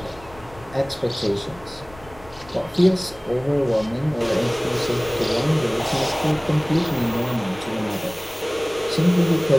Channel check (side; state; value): left; noise; rumble, 21 dB below the sound